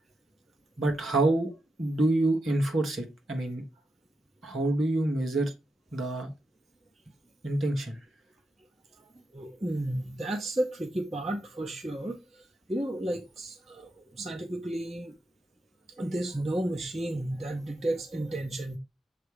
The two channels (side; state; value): both; normal; correlation 0.85